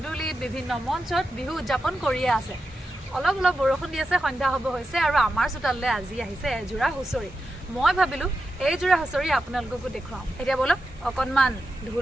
বিভিন্ন মঞ্চত বিহু উদযাপন কৰিয়ে আছে। অলপ অলপ বৰষুণ দি আছে, সন্ধ্যা হ'ব হৈছে, আৰু আমাৰ চোতাললৈ আজি আহিছে এযোৰা হুঁচৰি। মই ভাবিলোঁ এইযোৰা হুঁচৰি আপোনালোককো দেখুৱাওঁ। এতিয়া বলক অকণমান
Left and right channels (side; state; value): both; normal; correlation 0.89